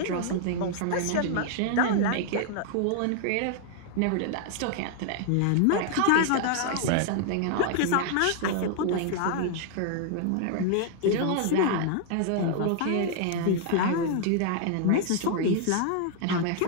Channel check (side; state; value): both; different; correlation 0.00